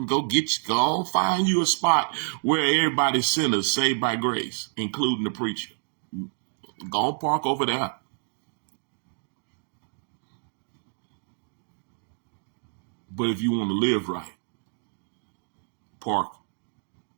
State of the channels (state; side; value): silent; left; 60 dB below the other